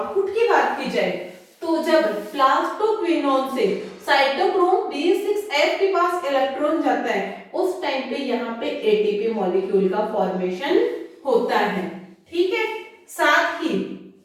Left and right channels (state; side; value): identical; both; correlation 1.00